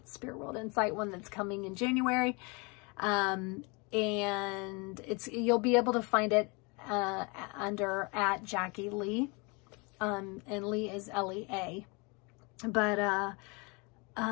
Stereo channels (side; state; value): right; quieter; 29.8 dB